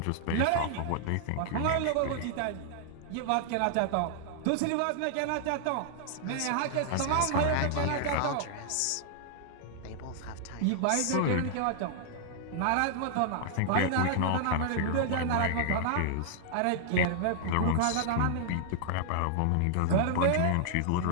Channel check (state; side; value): different; both; correlation -0.01